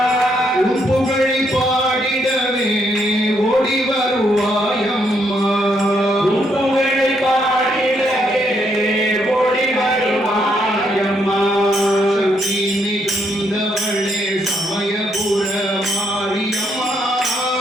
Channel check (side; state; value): both; normal; correlation 0.74